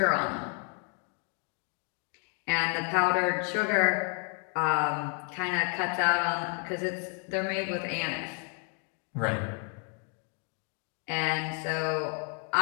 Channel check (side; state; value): right; quieter; 37.0 dB